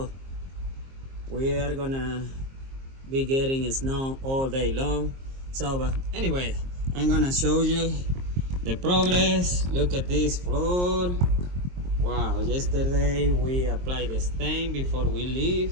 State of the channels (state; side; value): late; left; 22 ms